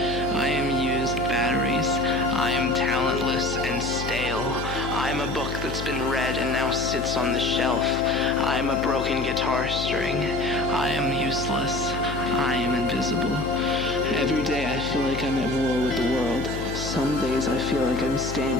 am used batteries. I am talentless and stale. I am a book that's been read and now sits on the shelf. I am a broken guitar string. I am useless. I am invisible. Every day I feel like I'm at war with the world. Some days I feel like I'm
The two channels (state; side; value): noise; left; hum, 8 dB below the sound